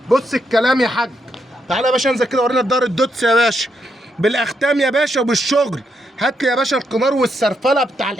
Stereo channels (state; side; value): normal; both; correlation 0.79